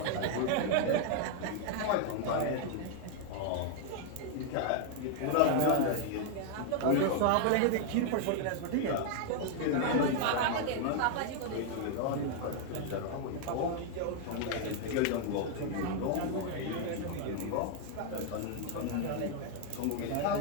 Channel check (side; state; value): both; different; correlation 0.00